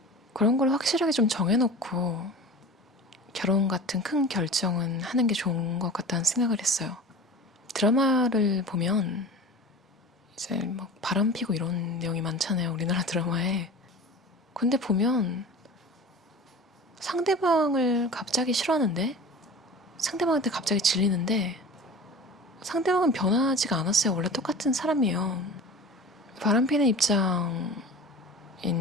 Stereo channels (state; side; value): normal; both; correlation 0.37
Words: 그런 걸 확실하게 좀 정해놓고 결혼 같은 큰 결정은 하는 게 좋은 것 같다는 생각을 했어요. 드라마를 보면 이제 막 바람 피고 이런 내용이 많잖아요, 우리나라 드라마에. 근데 보면 상대방을 갑자기 싫어하는데 상대방한테 갑자기 질리는데 상대방은 변하지가 않았어요. 원래 똑같은 사람이에요. 바람 피는 입장인